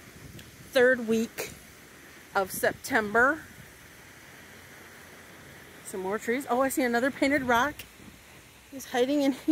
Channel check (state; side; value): identical; both; correlation 1.00